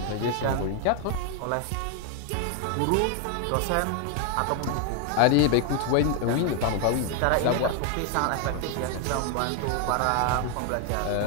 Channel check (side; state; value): both; different; correlation 0.00